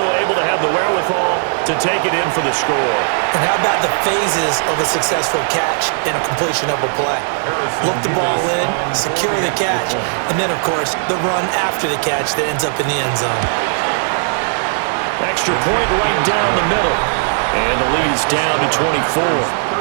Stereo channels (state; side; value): silent; left; 68 dB below the other